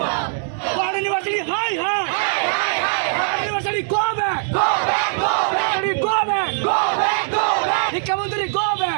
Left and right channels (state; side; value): silent; left; digital silence